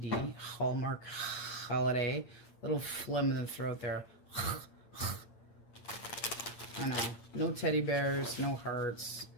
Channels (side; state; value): right; late; 8.7 ms